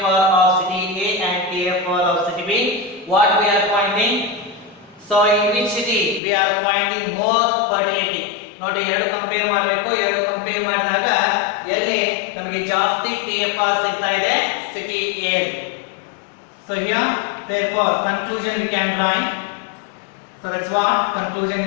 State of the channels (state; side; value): drops out; right; at 6.2 s